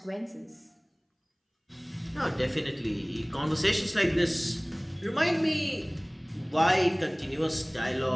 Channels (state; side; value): identical; both; correlation 1.00